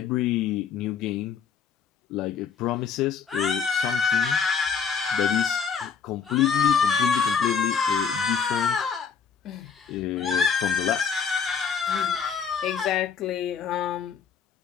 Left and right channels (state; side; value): quieter; right; 6.5 dB